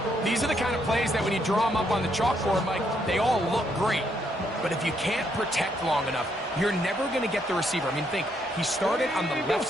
These are the kind of plays that when you draw them up on the chalkboard, Mike, they all look great. But if you can't protect long enough, you're never going to get the receiver. I mean, think, he started on the left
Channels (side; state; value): both; normal; correlation 0.74